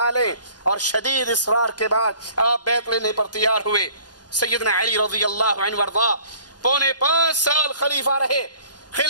اور شدید اصرار کے بعد آپ بیعت لینے پر تیار ہوئے۔ سیدنا علی رضی اللہ عنہ وارضا 5.25 سال خلیفہ رہے،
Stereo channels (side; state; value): right; late; 0.69 ms